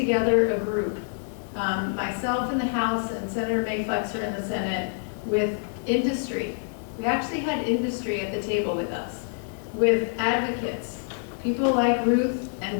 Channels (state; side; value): silent; right; 59 dB below the other